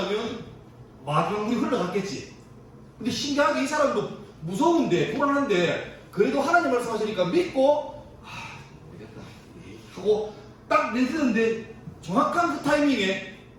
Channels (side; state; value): both; identical; correlation 1.00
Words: 마지막 물이 흘러갔겠지. 근데 신기하게 이 사람도 무서운데 불안한데 그래도 하나님 말씀하시니까 믿고 되겠다 하고 딱 내딛는데 정확한 그 타이밍에